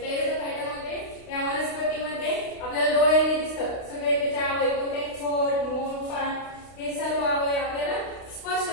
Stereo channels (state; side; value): late; right; 32 ms